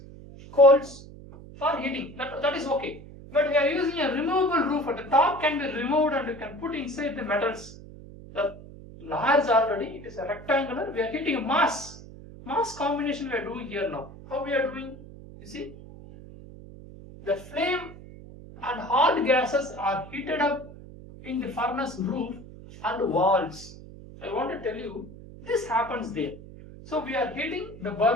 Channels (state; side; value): noise; right; hum, 17 dB below the sound